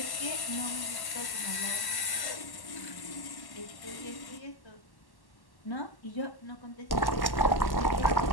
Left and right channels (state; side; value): late; right; 1.1 ms